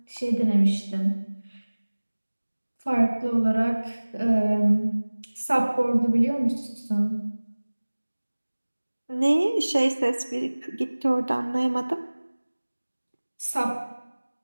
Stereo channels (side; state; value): both; inverted; correlation -1.00